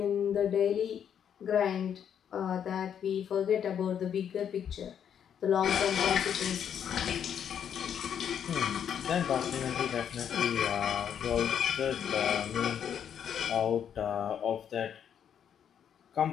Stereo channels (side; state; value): right; quieter; 8.6 dB